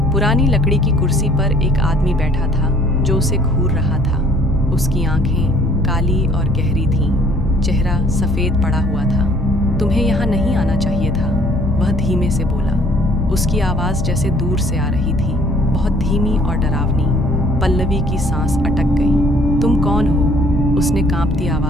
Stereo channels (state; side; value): normal; both; correlation 0.57